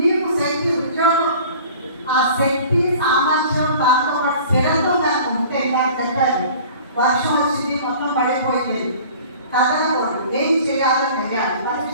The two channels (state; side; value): inverted; both; correlation -0.45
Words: శక్తి, ఉద్యోగం, ఆ శక్తి, సామర్థ్యం, దాంతో పాటు స్థిరత్వం నాకు ఉంటే నాకు చెప్పారు. వర్షం వచ్చింది, మొత్తం పడిపోయింది, కదలకూడదు, ఏం చేయాలో తెలియాలి.